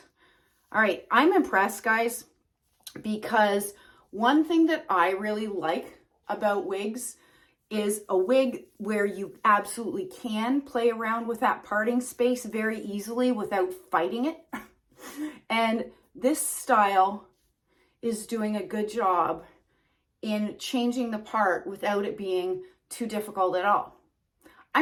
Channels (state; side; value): identical; both; correlation 1.00